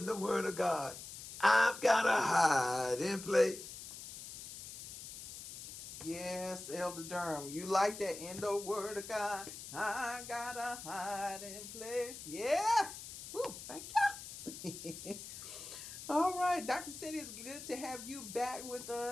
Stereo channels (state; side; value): noise; left; hiss, 11 dB below the sound